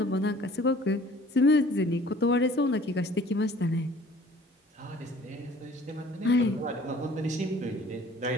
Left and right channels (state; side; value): normal; both; correlation 0.51